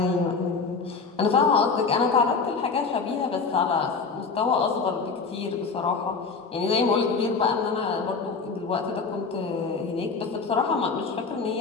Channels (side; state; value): right; quieter; 4.8 dB